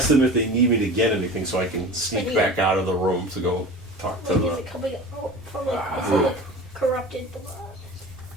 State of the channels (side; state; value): both; normal; correlation 0.36